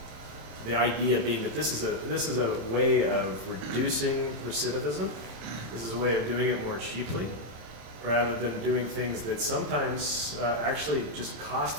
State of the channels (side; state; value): left; late; 27 ms